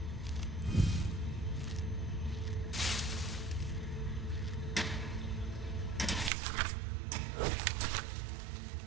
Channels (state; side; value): drops out; left; at 6.3 s